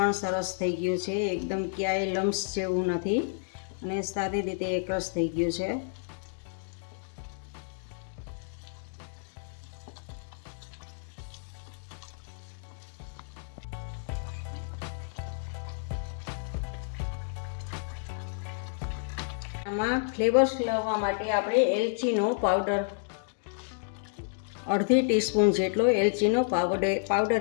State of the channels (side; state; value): right; silent; digital silence